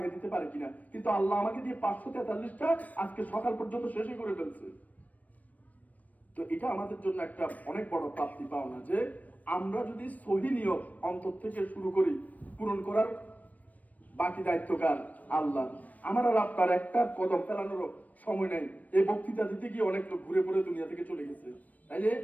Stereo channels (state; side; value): late; right; 0.074 ms